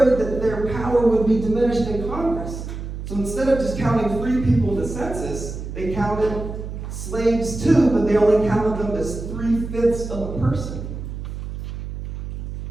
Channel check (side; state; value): right; noise; hum, 7 dB below the sound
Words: that their power would be diminished in Congress. So instead of just counting free people in the census, they counted slaves too, but they only counted them as 3/5 of a person.